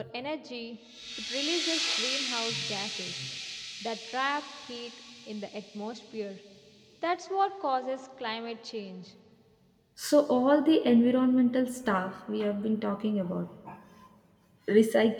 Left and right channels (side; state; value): both; identical; correlation 1.00